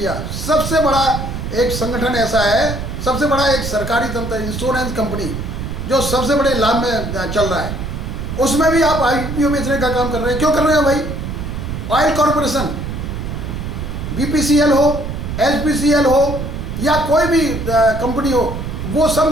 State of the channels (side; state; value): right; noise; rumble, 5 dB below the sound